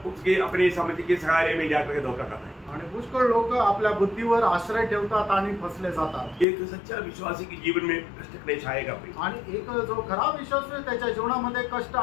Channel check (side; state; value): right; drops out; at 6.5 s